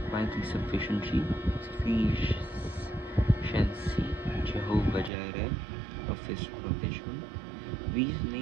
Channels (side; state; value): left; drops out; at 5.1 s